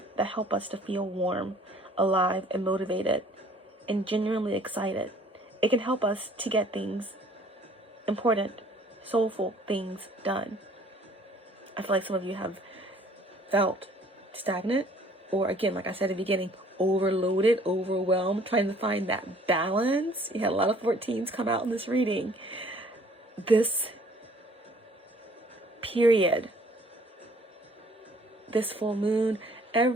that help us to feel warm, alive, and motivated, and genuinely excited. It can help us to get things, important, soulful things done. I feel like some of you have felt stagnant, or again, like I said at the beginning, overloaded, overwhelmed, trying to find that balance. You had a lot of 14s come out in this reading. This period, this full moon,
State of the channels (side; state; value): both; normal; correlation 0.56